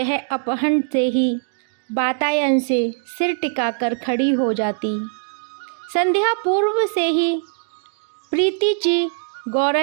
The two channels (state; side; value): silent; left; digital silence